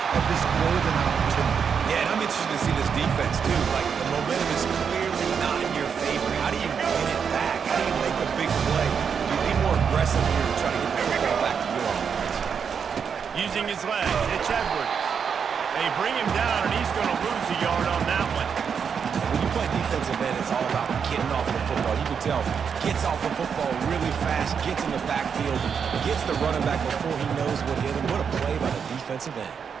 of this golden opportunity? Yeah, and I'm interested to see this defense, too. Like, the momentum is clearly not in your favor. How do you win it back? How do you make a big play? You be more aggressive here to try to get the football back to your offense. Using his legs, it's Edwards. They bring him down, and he's going to lose a yard on that one. When you play defensive end, it's all about getting off the football. You can tell, gets off the football really fast, gets in the backfield, gets the running back before he knows what hit him. What a play by the defensive end.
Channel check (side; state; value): left; quieter; 6.8 dB